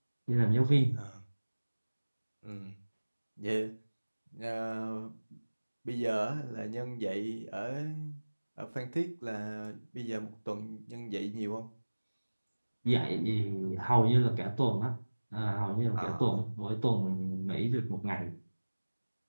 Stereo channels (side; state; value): both; inverted; correlation -1.00